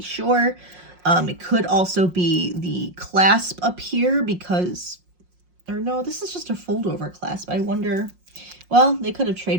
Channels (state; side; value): late; left; 5.6 ms